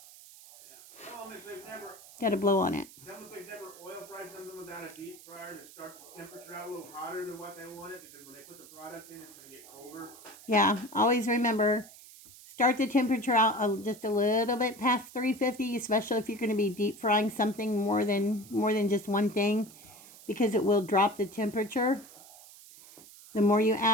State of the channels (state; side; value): noise; right; hiss, 20 dB below the sound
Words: Got to blow on it. Tell them if they've never oil fried something without a deep fryer to start the temperature out a little hotter than what they wanted, because when they put the product in, it's going to get colder. Yeah, always remember, start the temperature out just a little bit past 350, especially if you're going to be deep frying something more than just one thing, because it will drop the temperature. The more you